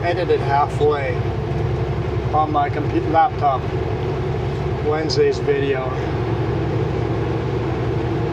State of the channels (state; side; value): identical; both; correlation 1.00